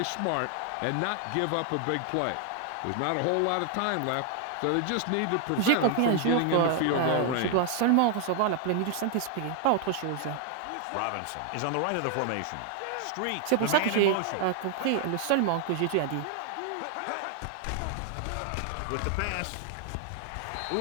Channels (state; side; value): different; both; correlation 0.00